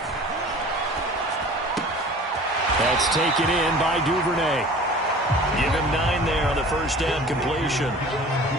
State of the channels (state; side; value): normal; both; correlation 0.44